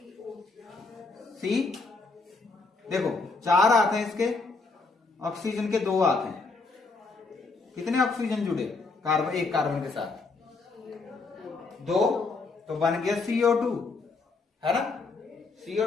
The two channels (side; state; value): right; quieter; 3.9 dB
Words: सी। देखो 4 हाथ हैं इसके, ऑक्सीजन के 2 हाथ हैं, कितने ऑक्सीजन जुड़े कार्बन, एक कार्बन के साथ 2, तो बन गया CO2, है ना?